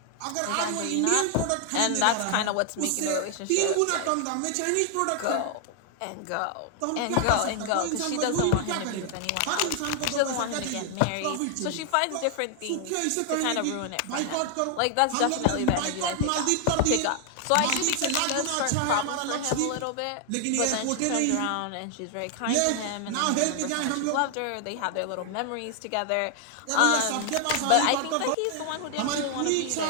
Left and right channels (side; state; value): both; different; correlation 0.00